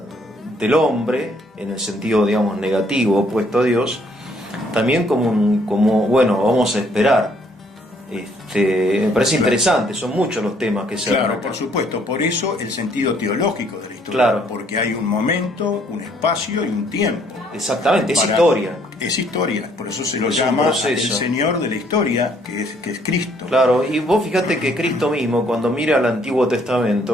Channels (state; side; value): normal; both; correlation 0.65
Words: del hombre, en el sentido, digamos, negativo, opuesto a Dios, también como bueno, vamos a esperar. Me parece interesante, son muchos los temas que se Claro, por supuesto, por eso el sentido teológico de la historia, claro, porque hay un momento, un espacio y un tiempo. Exactamente, es historia. Es historia, por eso se lo llama el Señor de la historia, que es Cristo. Claro, y vos fíjate que Cristo mismo, cuando mira al Antiguo